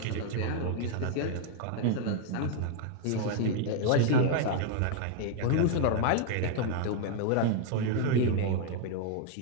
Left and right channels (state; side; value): different; both; correlation 0.00